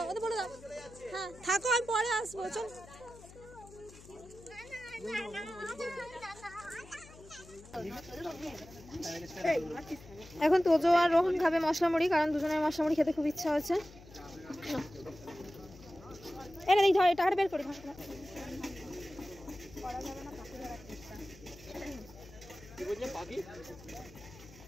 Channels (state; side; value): noise; left; hum, 20 dB below the sound